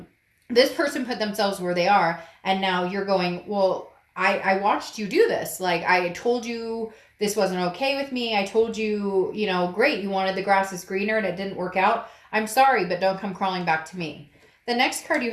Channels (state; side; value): identical; both; correlation 1.00